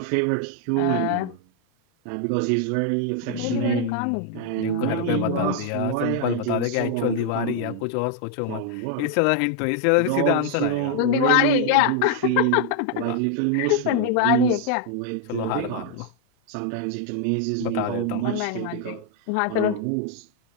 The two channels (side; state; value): both; different; correlation 0.00